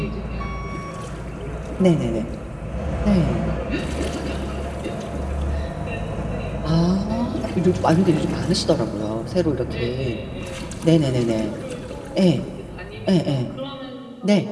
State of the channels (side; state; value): both; identical; correlation 1.00